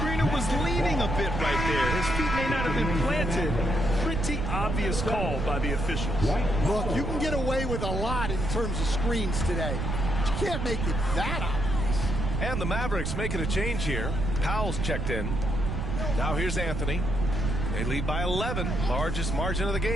was leaning a bit right there. His feet may not have been planted. Pretty obvious call by the officials. Look, you can get away with a lot in terms of screens today. You can't make it that obvious. And the Mavericks making a change here. Powell's checked in. Now here's Anthony. They lead by 11, largest margin of the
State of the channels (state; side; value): noise; right; rumble, 2 dB below the sound